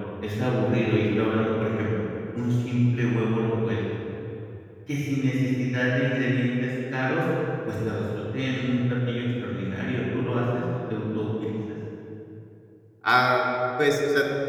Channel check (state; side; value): identical; both; correlation 1.00